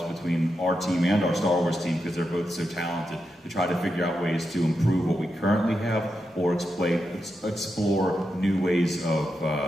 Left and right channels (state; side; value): normal; both; correlation 0.87